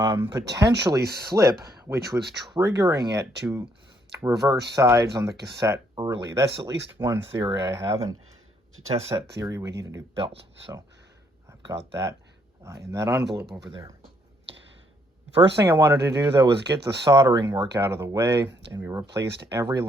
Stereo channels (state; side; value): normal; both; correlation 0.70